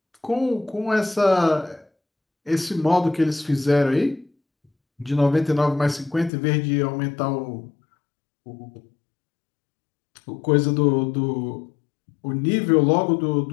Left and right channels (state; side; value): drops out; right; at 6.3 s